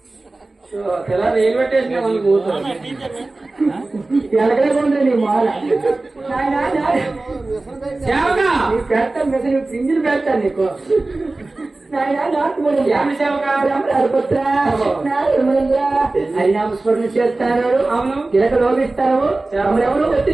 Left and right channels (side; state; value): left; quieter; 3.1 dB